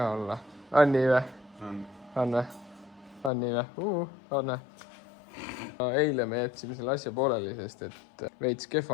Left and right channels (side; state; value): right; drops out; at 3.3 s